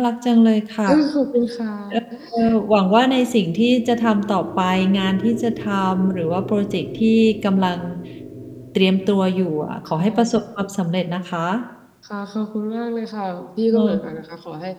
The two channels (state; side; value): identical; both; correlation 1.00